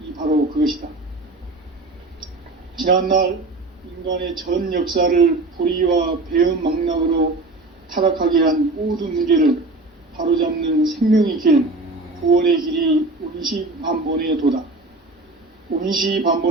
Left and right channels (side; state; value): left; quieter; 3.1 dB